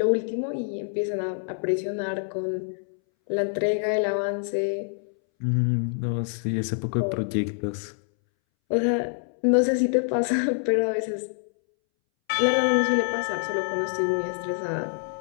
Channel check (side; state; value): right; silent; 61 dB below the other